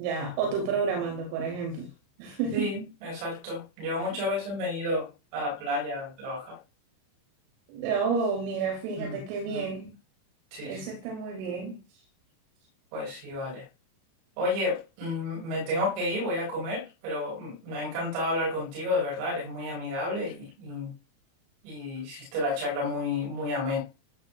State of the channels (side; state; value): left; late; 30 ms